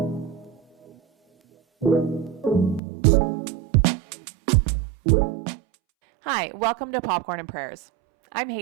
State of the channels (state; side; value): drops out; left; at 2.8 s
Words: Hi, welcome to Popcorn and Prayers. I'm